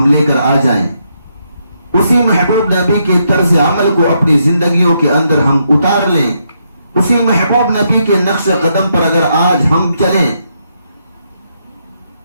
لے کر آ جائیں، اسی محبوب نبی کے طرز عمل کو اپنی زندگیوں کے اندر ہم اتار لیں، اسی محبوب نبی کے نقش قدم پر اگر آج ہم چلیں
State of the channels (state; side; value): inverted; both; correlation -0.78